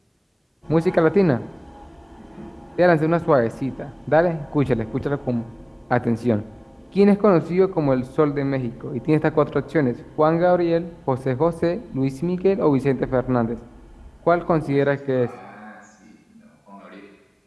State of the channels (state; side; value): identical; both; correlation 1.00